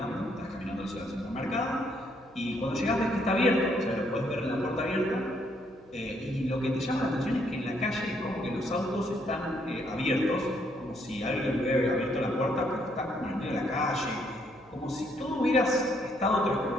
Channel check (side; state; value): right; noise; hum, 30 dB below the sound